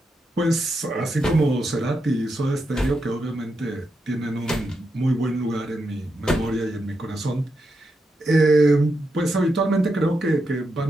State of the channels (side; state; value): both; normal; correlation 0.85